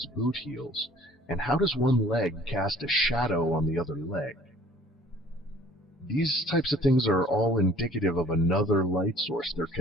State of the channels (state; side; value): normal; both; correlation 0.53